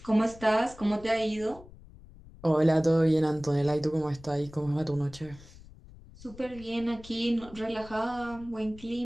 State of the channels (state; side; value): noise; left; rumble, 20 dB below the sound